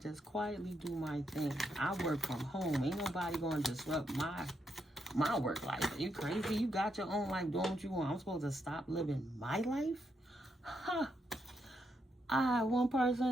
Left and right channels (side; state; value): both; normal; correlation 0.80